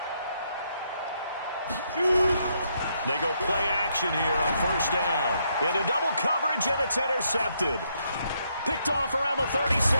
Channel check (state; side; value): inverted; both; correlation -0.75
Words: run. They go play action here on first down. Into double coverage, and it's intercepted. Picked off around the 37,